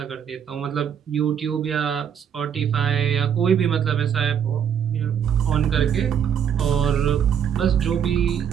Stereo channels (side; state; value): left; quieter; 8.3 dB